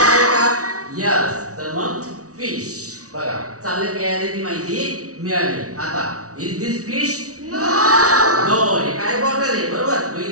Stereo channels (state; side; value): late; left; 0.66 ms